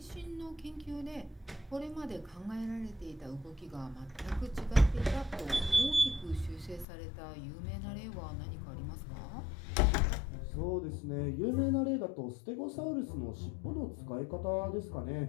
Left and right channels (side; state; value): right; drops out; at 6.9 s